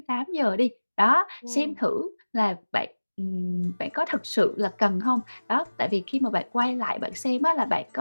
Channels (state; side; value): inverted; both; correlation -1.00